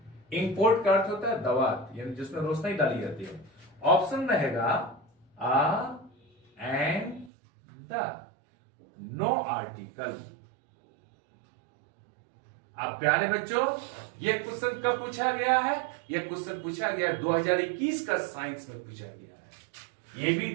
Import का अर्थ होता है दवात, यानी जिसमें रोशनी डाली जाती है। ऑप्शन रहेगा आ एंड द, नो आर्टिकल। अब प्यारे बच्चों, ये क्वेश्चन कब पूछा गया है? ये क्वेश्चन पूछा गया 2021 का साइंस में पूछा गया है। ये भी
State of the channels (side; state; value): left; drops out; at 7.3 s